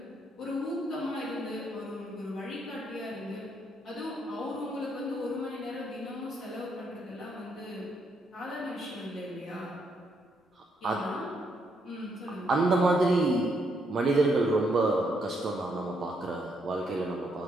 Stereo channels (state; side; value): normal; both; correlation 0.75